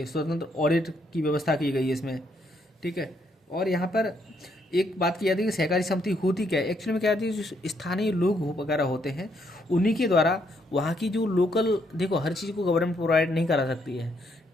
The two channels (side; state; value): both; normal; correlation 0.73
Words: स्वतंत्र ऑडिट की व्यवस्था की गई है इसमें। ठीक है। और यहाँ पर एक बात की जाती है कि सहकारी समिति होती क्या है, एक्चुअली में क्या होती है, जो स्थानीय लोग वगैरह होते हैं उन्हीं के द्वारा वहाँ की जो लोकल, देखो हर चीज़ को गवर्नमेंट प्रोवाइड नहीं करा सकती है।